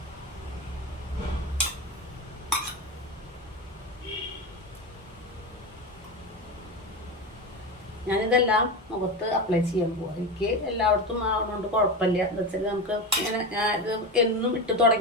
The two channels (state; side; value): normal; both; correlation 0.21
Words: ഞാനിതെല്ലാം മുഖത്ത് അപ്ലൈ ചെയ്യാൻ പോവാം. എനിക്ക് എല്ലായിടത്തും ആവുന്നതുകൊണ്ട് കുഴപ്പമില്ല. എന്താ വെച്ചാൽ നമുക്ക് ഇങ്ങനെ ഇത് എന്നും ഇട്ട്